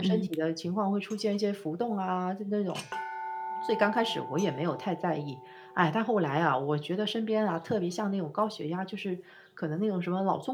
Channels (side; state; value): both; identical; correlation 1.00